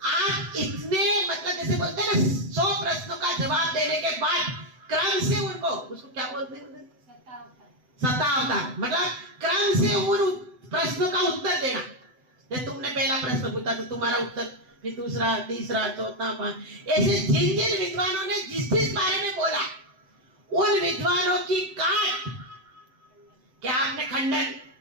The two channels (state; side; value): late; left; 7.9 ms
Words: इतने, मतलब जैसे बोलते हैं ना, 100 प्रश्नों का जवाब देने के बाद क्रम से उनको, उसको क्या बोलते हैं? शतावतार, मतलब क्रम से उन प्रश्नों का उत्तर देना। जैसे तुमने पहला प्रश्न पूछा तो तुम्हारा उत्तर, फिर दूसरा, तीसरा, चौथा, 5, ऐसे जिन जिन विद्वानों ने जिस जिस बारे में बोला, उन विद्वानों की काट, क्या आपने खंडन,